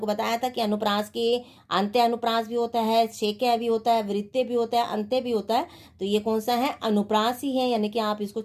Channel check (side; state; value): both; identical; correlation 1.00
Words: बताया था कि अनुप्रास के अंत्य अनुप्रास भी होता है, छेक्या भी होता है, वृत्य भी होता है, अंत्य भी होता है। तो ये कौन सा है? अनुप्रास ही है, यानी कि आप इसको